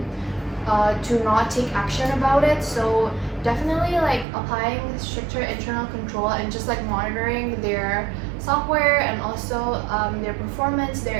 to not take action about it. So definitely like applying stricter internal control and just like monitoring their software and also their performance,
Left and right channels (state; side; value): drops out; left; at 4.2 s